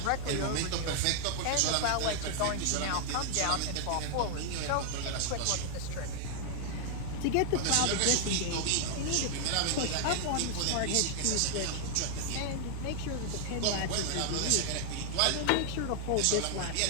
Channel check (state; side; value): different; both; correlation 0.00